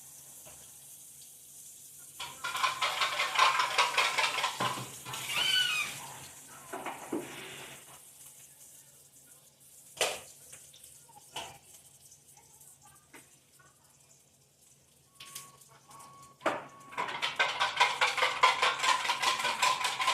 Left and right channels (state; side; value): identical; both; correlation 1.00